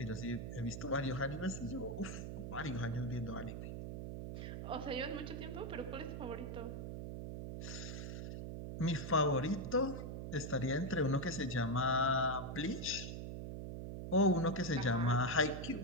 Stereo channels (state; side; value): noise; right; hum, 6 dB below the sound